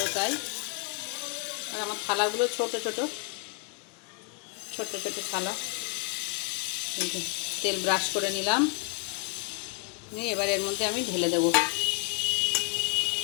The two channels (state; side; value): quieter; right; 36.1 dB